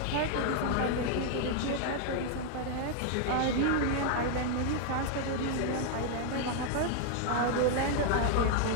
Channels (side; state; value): both; different; correlation 0.00